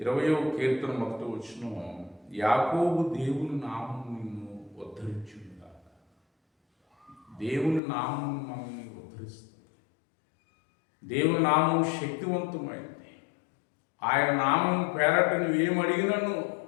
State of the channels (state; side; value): drops out; right; at 7.8 s